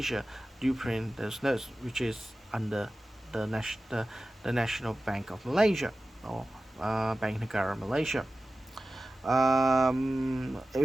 do print those notes, which is under the National Bank of Malaysia, or Bank Negara Malaysia.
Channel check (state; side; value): normal; both; correlation 0.95